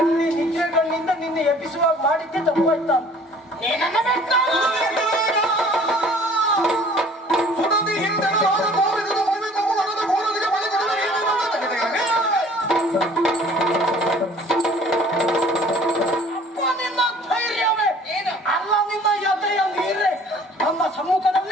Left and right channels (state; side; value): normal; both; correlation 0.52